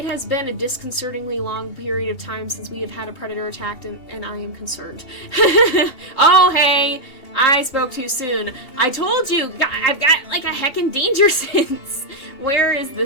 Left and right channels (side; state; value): right; late; 2.8 ms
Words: has been a disconcertingly long period of time since we have had a predator attacked, and I am concerned. Oh, hey! I spoke too soon. I told you! I've got, like, a heckin' danger sense! Where is